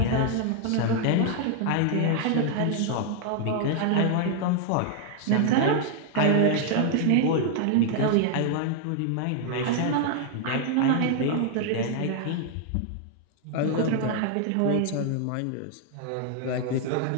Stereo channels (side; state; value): both; different; correlation 0.00